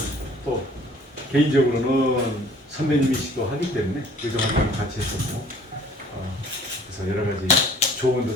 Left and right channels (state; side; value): normal; both; correlation 0.52